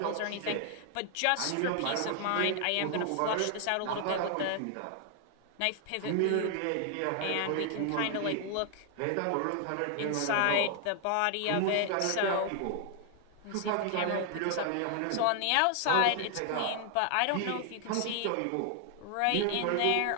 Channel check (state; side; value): different; both; correlation 0.00